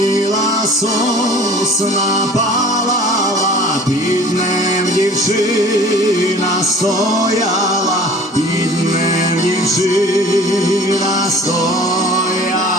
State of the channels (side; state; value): both; normal; correlation 0.46